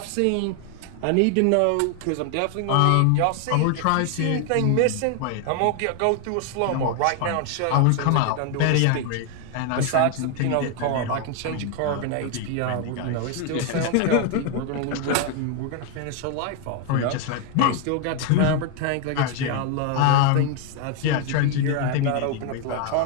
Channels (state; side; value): different; both; correlation 0.01